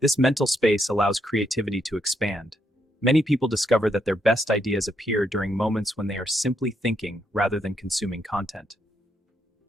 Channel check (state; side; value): normal; both; correlation 0.77